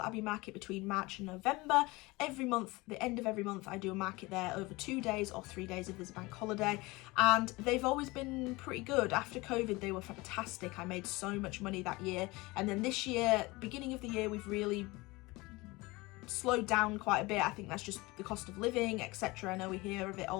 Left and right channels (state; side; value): quieter; right; 22.6 dB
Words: Abbey market between March and November. Every month, the end of every month, I do a market there over 2 days or 3 days if there's a bank holiday. And they've always been pretty good. After COVID, they were fantastic. I made so much money that year. And then this year, beginning of the year, we've really slowed down quite a bit. I think that's just the cost of living, etc. I know we hear of it